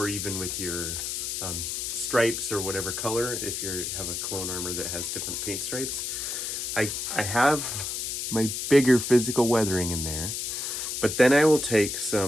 even with your stripes or whatever color, if you have a clone armor that has different paint stripes. I have my bigger physical weathering in there, but then I will take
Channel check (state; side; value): noise; left; hiss, 3 dB below the sound